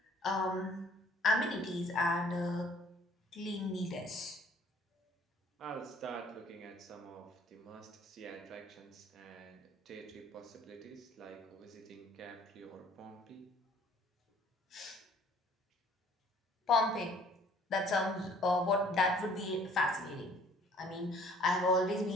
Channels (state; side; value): normal; both; correlation 0.56